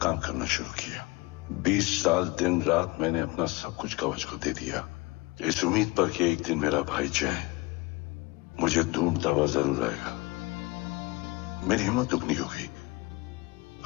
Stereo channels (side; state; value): right; quieter; 24.1 dB